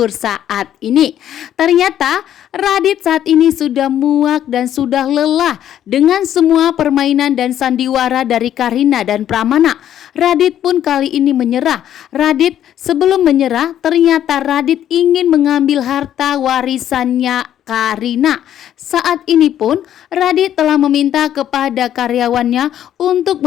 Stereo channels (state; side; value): quieter; right; 10.9 dB